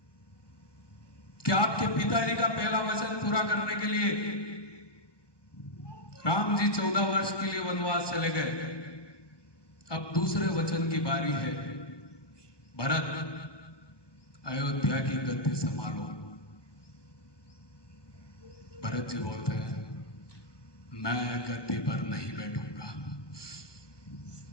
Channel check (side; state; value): right; late; 1.2 ms